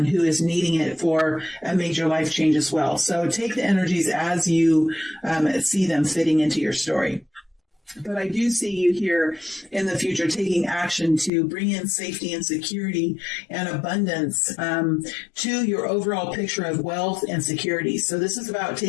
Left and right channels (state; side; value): drops out; right; at 11.3 s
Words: who is needing it for a major life change as well. So take the energies as you see them fitting into your story. But I do see you here in the future taking action to bring in safety and security and abundance to your overall picture of wealth and security. So this is about